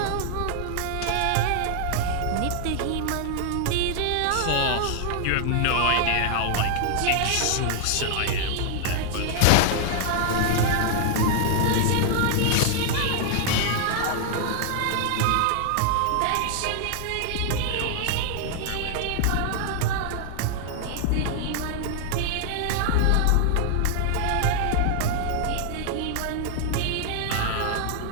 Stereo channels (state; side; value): different; both; correlation 0.00